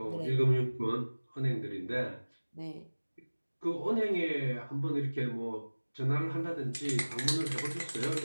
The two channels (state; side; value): inverted; both; correlation -1.00